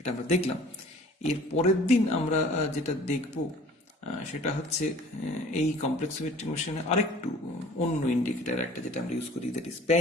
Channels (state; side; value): normal; both; correlation 0.49